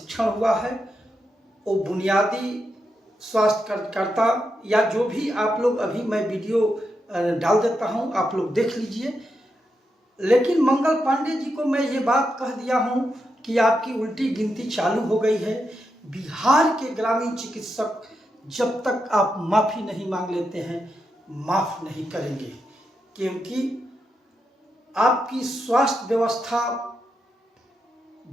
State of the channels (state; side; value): normal; both; correlation 0.85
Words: हुआ है, वो बुनियादी स्वास्थ्य कार्यकर्ता या जो भी आप लोग, अभी मैं वीडियो डाल देता हूं, आप लोग देख लीजिए। लेकिन मंगल पांडे जी को मैं ये बात कह दिया हूं कि आपकी उल्टी गिनती चालू हो गई है। बिहार के ग्रामीण चिकित्सक जब तक आप माफ़ी नहीं मांग लेते हैं माफ़ नहीं करेंगे, क्योंकि आपकी स्वास्थ्य व्यवस्था